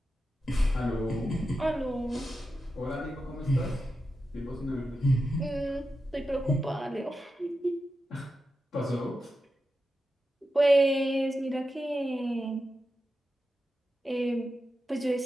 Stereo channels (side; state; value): both; normal; correlation 0.90